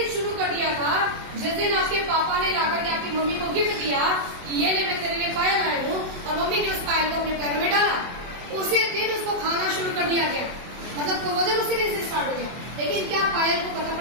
शुरू कर दिया था जिस दिन आपके पापा ने लाकर के आपकी मम्मी को गिफ्ट दिया कि ये ले, मैं तेरे लिए पायल लाया हूँ, और मम्मी ने उस पायल को अपने पैरों में डाला, उसी दिन उसको खाना शुरू कर दिया गया। मतलब कोरोजन उसी दिन से स्टार्ट हो गया। लेकिन क्या पायल को पता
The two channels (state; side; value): late; left; 24 ms